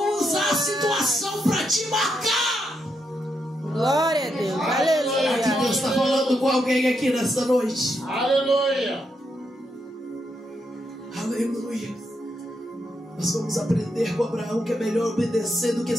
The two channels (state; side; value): normal; both; correlation 0.81